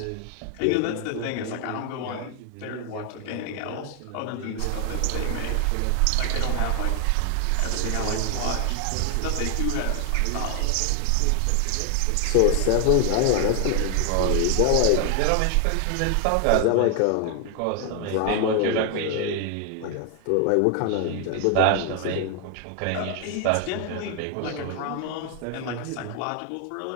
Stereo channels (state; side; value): different; both; correlation 0.00